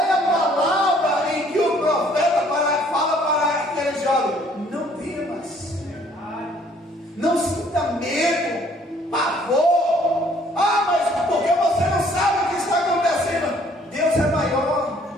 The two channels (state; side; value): normal; both; correlation 0.60